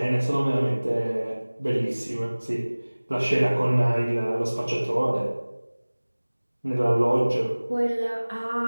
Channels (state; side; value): inverted; both; correlation -1.00